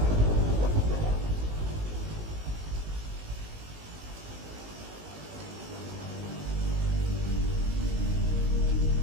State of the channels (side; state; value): left; late; 19 ms